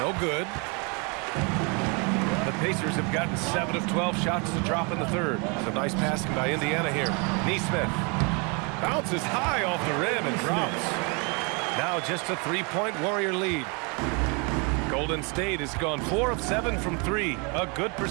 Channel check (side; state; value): left; quieter; 32.5 dB